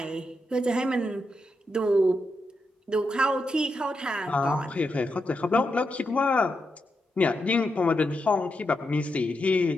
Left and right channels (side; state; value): both; normal; correlation 0.85